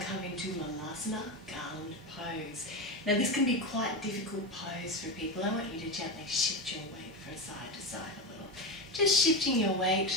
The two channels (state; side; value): normal; both; correlation 0.17